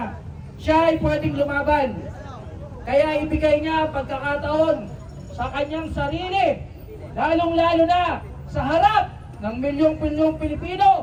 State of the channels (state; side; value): identical; both; correlation 1.00